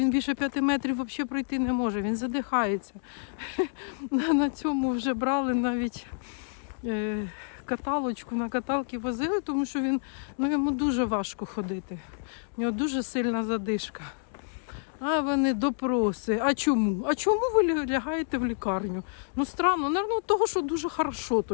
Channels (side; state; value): right; silent; digital silence